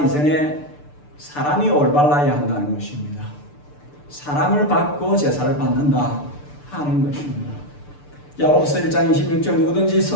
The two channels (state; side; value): late; right; 6.8 ms